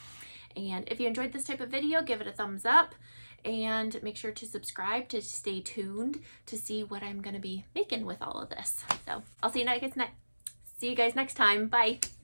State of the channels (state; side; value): inverted; both; correlation -1.00